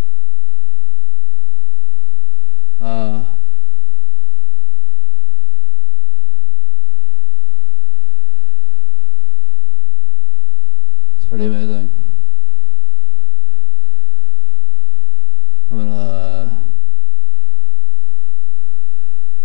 It's pretty amazing. I'm gonna,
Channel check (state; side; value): late; right; 14 ms